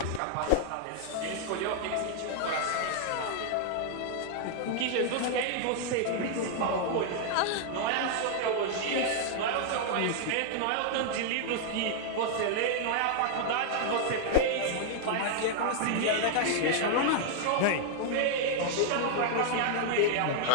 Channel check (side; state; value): both; different; correlation -0.01